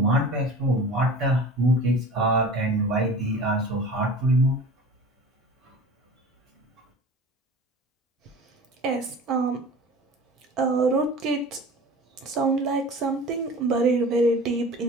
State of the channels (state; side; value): normal; both; correlation 0.39